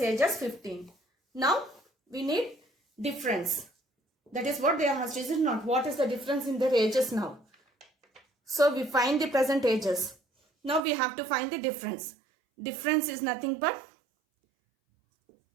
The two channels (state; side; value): drops out; left; at 10.8 s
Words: age as 15. Now we need difference. That is what they asked. Is it not? What is the difference in their ages now? So we find the present ages. Now we have to find the difference. Difference is nothing but